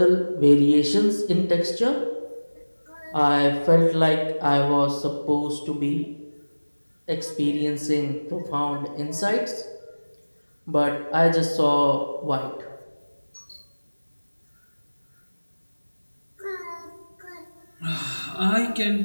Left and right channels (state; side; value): inverted; both; correlation -1.00